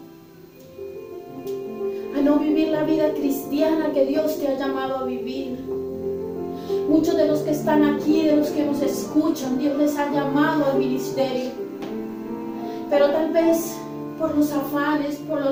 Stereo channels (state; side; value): identical; both; correlation 1.00